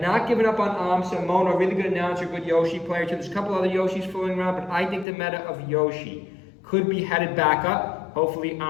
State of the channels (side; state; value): right; drops out; at 5.1 s